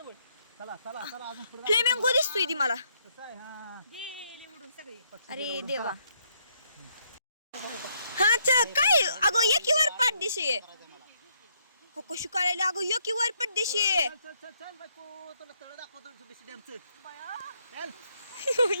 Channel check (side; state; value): both; inverted; correlation -0.72